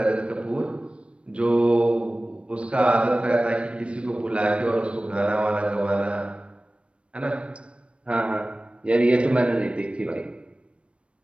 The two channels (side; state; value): left; late; 0.060 ms